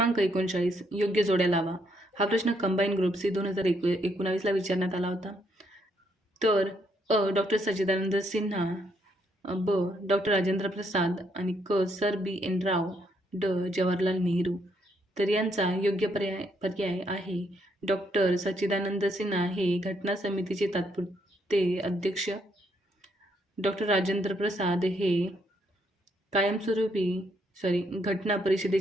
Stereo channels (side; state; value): both; normal; correlation 0.73